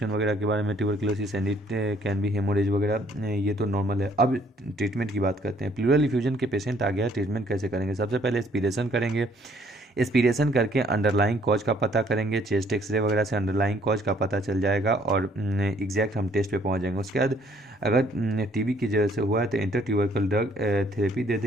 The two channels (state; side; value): normal; both; correlation 0.63